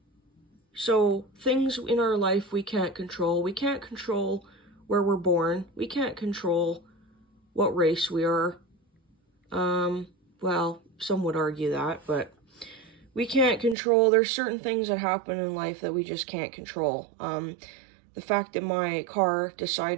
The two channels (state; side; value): drops out; left; at 13.8 s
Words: So things in our life we can't control. We can't control where we're born. We can't control what race we are. Well, some would argue that, but we can't control. There's certain things that happen in life that we just can't control. The fact that my car